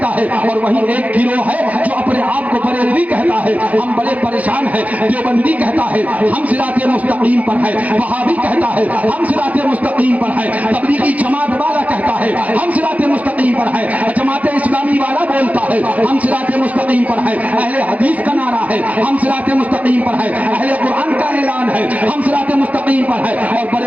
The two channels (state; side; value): late; left; 0.072 ms